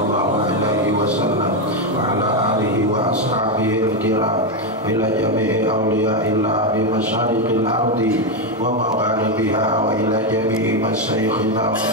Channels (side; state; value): both; normal; correlation 0.07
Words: alaihi wasallam wa ala alihi wa ashabihi al-kiram ila jami'i awliya'illah bi masyariqil ardi wa magharibiha wa ila jami'i masyayikhina wa